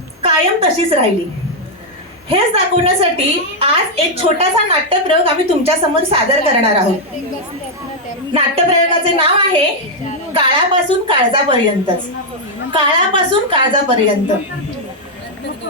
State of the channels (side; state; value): both; normal; correlation -0.01